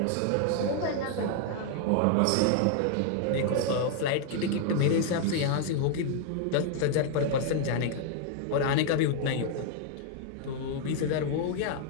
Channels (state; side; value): different; both; correlation 0.00